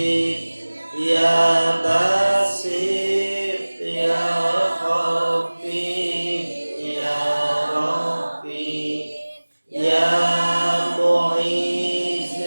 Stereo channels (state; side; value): inverted; both; correlation -1.00